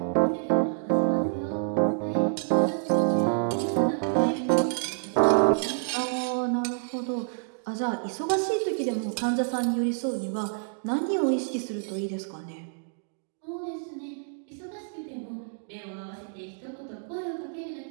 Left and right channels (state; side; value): silent; left; digital silence